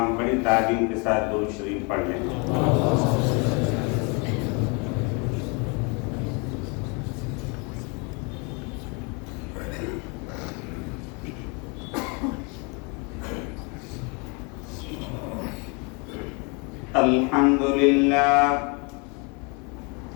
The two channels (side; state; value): right; quieter; 32.1 dB